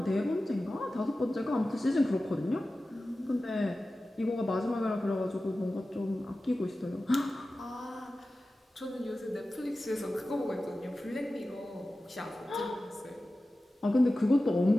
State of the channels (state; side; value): normal; both; correlation 0.95